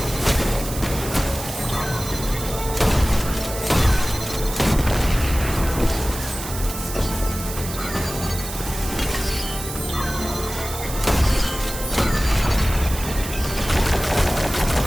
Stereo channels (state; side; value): noise; right; hiss, 9 dB below the sound